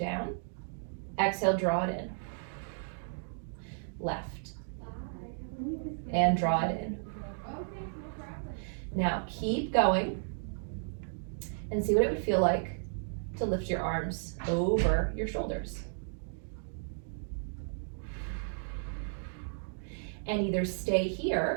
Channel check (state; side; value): silent; left; digital silence